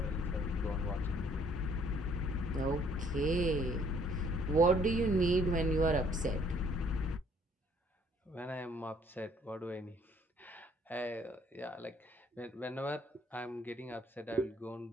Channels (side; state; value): both; normal; correlation 0.62